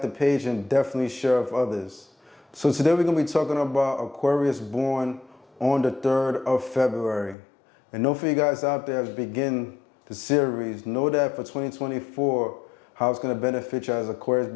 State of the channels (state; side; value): drops out; right; at 7.4 s